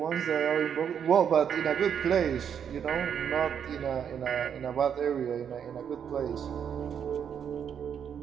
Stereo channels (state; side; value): quieter; left; 8.1 dB